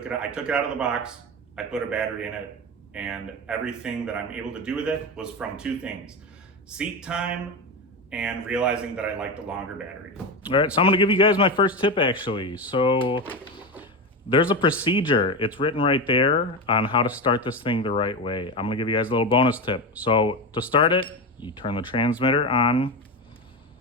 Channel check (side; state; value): both; normal; correlation 0.18